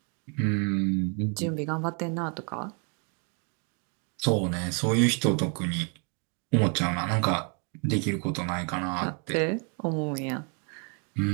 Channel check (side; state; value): left; quieter; 38.1 dB